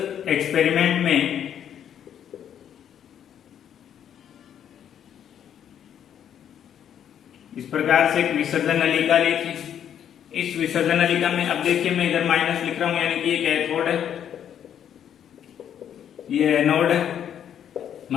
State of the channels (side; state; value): right; quieter; 9.4 dB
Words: एक्सपेरिमेंट में इस प्रकार से एक विसर्जन नलिका ली थी। इस विसर्जन नलिका में अब देखिए, मैं इधर माइनस लिख रहा हूं, यानी कि ये कैथोड है, ये एनोड है,